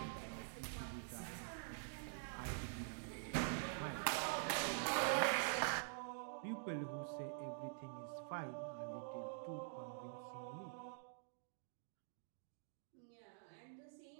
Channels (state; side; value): silent; left; digital silence